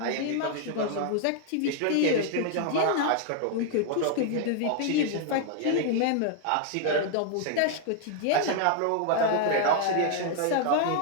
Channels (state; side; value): different; both; correlation 0.00